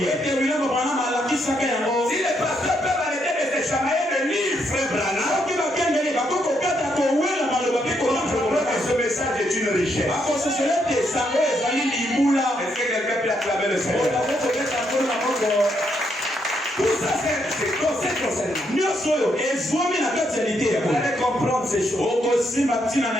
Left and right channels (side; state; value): both; normal; correlation 0.76